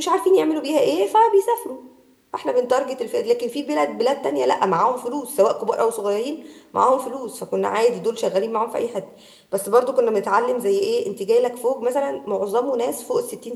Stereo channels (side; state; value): both; identical; correlation 1.00